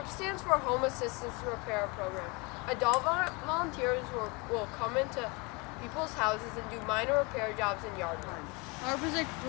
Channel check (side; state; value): right; quieter; 28.2 dB